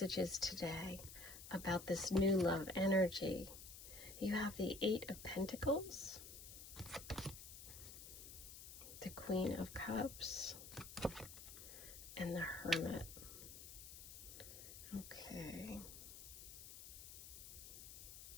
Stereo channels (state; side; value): noise; left; hiss, 12 dB below the sound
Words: today about this new love energy. You have the 8 of Pentacles, the Queen of Cups, and the Hermit. Okay.